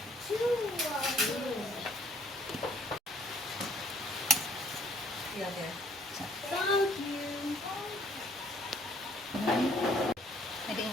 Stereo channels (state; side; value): normal; both; correlation 0.61